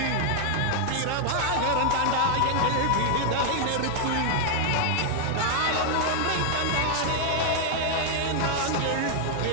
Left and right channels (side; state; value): both; different; correlation 0.00